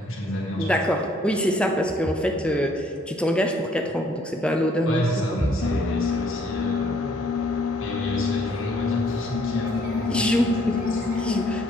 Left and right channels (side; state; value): both; normal; correlation 0.64